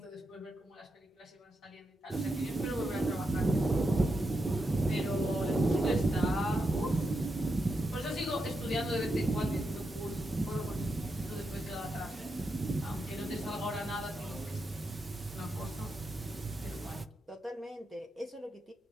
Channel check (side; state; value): both; normal; correlation 0.85